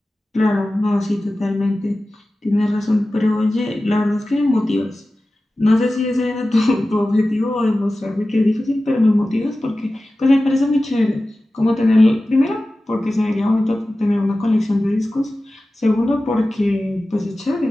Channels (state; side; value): normal; both; correlation 0.95